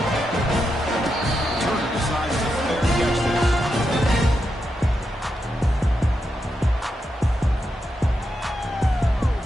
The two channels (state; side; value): normal; both; correlation 0.85